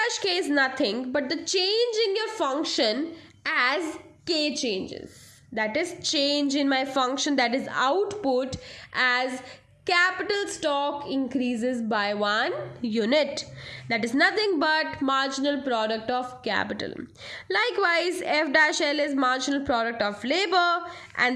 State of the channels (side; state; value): both; identical; correlation 1.00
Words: k is nothing but the change in your function as k changes. That is change in my function, that is output, as capital stock increases by 1 unit. That is nothing but marginal product of capital. Likewise, f dash l is marginal product of labor,